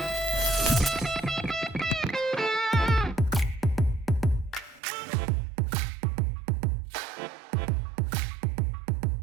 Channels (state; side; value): drops out; left; at 4.8 s